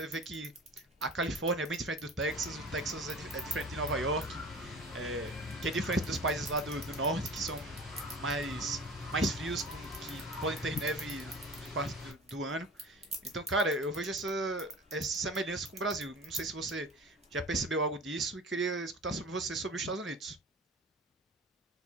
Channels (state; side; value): normal; both; correlation 0.38